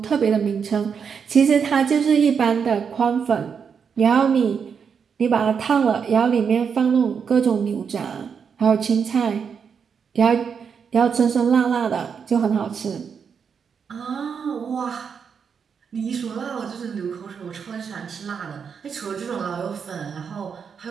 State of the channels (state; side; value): quieter; left; 6.6 dB